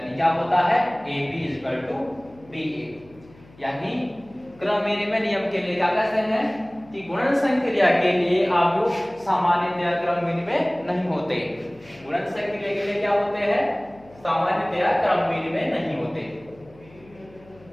क्या होता है? AB = BA। यानी क्रम विनिमय नियम के लिए क्या कहते हैं कि गुणन संक्रिया के लिए आव्यूह सामान्यतया क्रम विनिमय नहीं होते। गुणन संक्रिया के लिए क्या होते हैं? सामान्यतया क्रम विनिमय नहीं होते।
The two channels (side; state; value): left; noise; hum, 25 dB below the sound